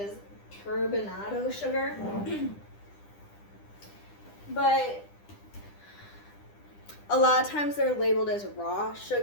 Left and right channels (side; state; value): right; late; 10 ms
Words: turbinado sugar. But a lot of times they're labeled as raw